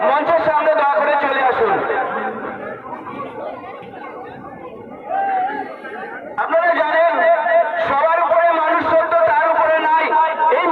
মঞ্চের সামনে দয়া করে চলে আসুন। আপনারা জানেন সবার উপরে মানুষ সত্য, তার উপরে নাই। এই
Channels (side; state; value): both; identical; correlation 1.00